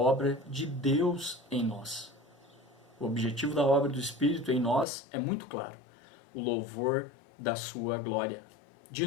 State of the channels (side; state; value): right; drops out; at 4.9 s